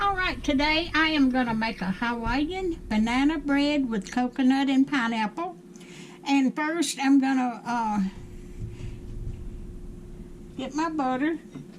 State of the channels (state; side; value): identical; both; correlation 1.00